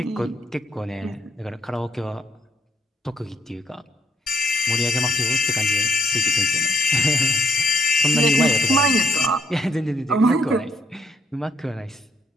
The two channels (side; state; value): both; normal; correlation 0.70